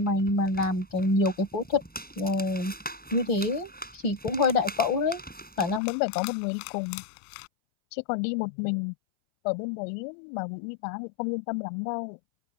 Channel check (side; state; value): right; drops out; at 5.8 s